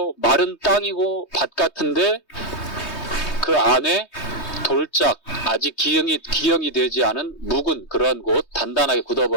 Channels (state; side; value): late; right; 3.2 ms